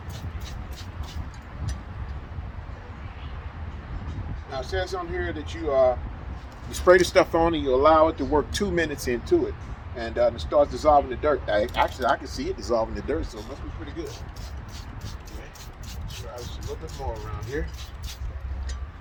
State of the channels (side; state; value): both; identical; correlation 1.00